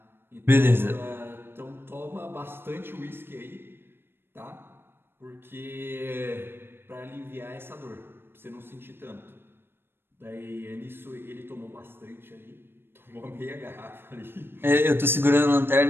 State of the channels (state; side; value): late; left; 0.10 ms